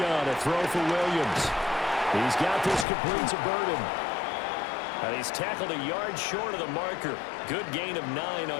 a throw for Williams. He's got this complete to Burden. And he's tackled a yard short of the marker. Good gain of 9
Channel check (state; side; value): drops out; right; at 2.9 s